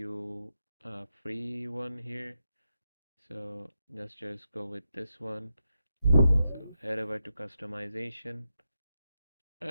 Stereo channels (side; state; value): both; inverted; correlation -0.86